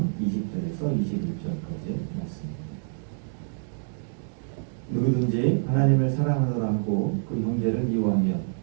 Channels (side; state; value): left; silent; 60 dB below the other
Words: 20절에서 21절까지 말씀입니다. 누구든지 하나님을 사랑하노라 하고 그 형제를 미워하면